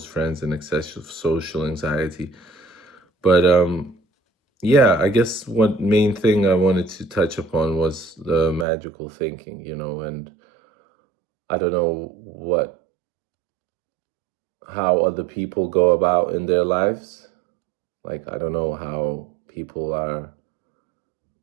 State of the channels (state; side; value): drops out; left; at 8.7 s